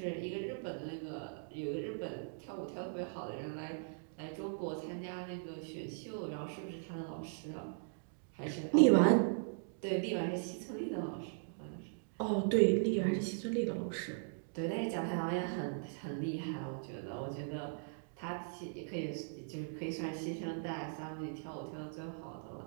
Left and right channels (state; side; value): silent; left; digital silence